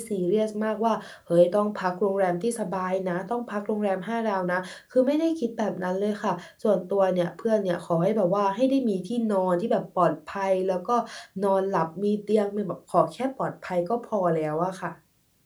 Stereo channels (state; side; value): identical; both; correlation 1.00